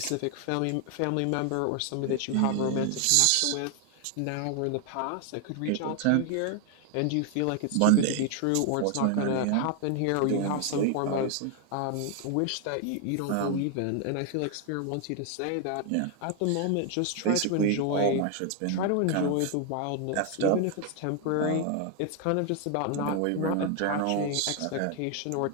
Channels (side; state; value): both; different; correlation 0.01